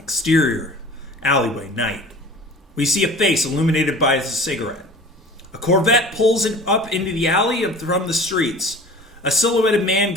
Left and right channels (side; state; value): both; normal; correlation 0.41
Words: alleyway, night. We see a face illuminated by a cigarette. A Corvette pulls it up into the alley from the streets. A silhouetted man